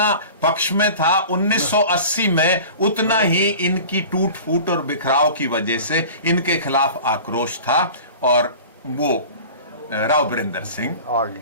पक्ष में था 1980 में, उतना ही इनकी टूट फूट और बिखराव की वजह से इनके खिलाफ आक्रोश था और वो राव वीरेंद्र सिंह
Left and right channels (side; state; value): both; inverted; correlation -0.39